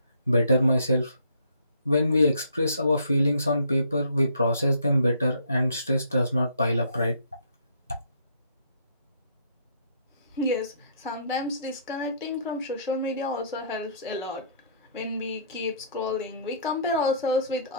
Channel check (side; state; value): both; inverted; correlation -0.61